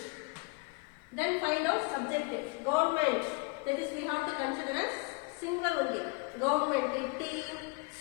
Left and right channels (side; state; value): right; quieter; 29.0 dB